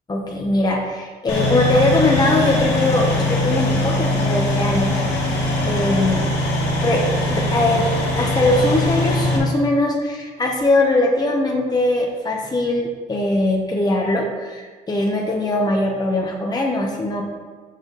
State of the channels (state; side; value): normal; both; correlation 0.57